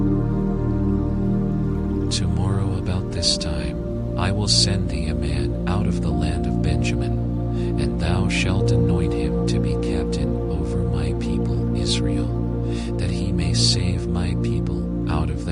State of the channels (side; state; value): both; identical; correlation 1.00